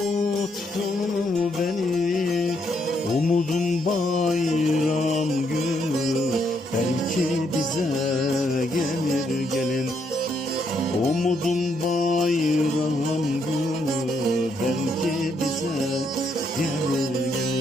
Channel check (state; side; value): normal; both; correlation 0.75